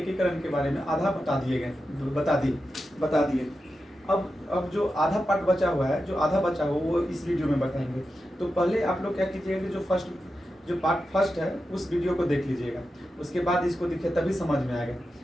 के बारे में आधा बता दिए। अब जो आधा पार्ट बचा हुआ है, वो इस वीडियो में बताएंगे। तो पहले आप लोग क्या कीजिएगा कि जो पार्ट फर्स्ट है उस वीडियो को देख लीजिएगा, उसके बाद इसको दिखे तभी समझ में आएगा।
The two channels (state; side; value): normal; both; correlation 0.90